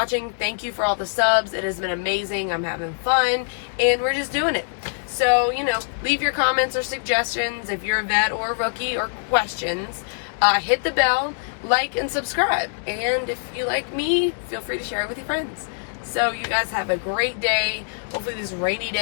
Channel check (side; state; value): right; silent; digital silence